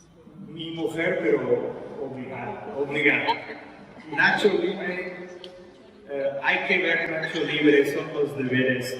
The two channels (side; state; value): both; identical; correlation 1.00